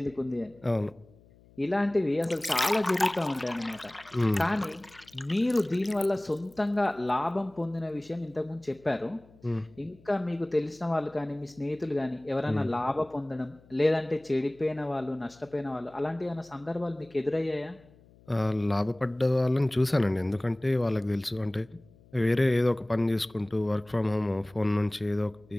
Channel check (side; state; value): left; noise; hum, 27 dB below the sound